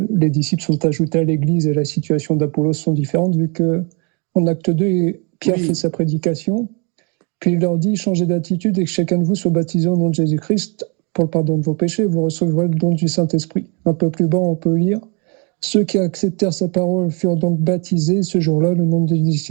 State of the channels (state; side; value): quieter; left; 33.1 dB